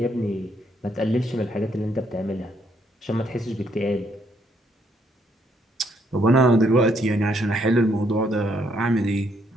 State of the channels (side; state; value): both; normal; correlation 0.72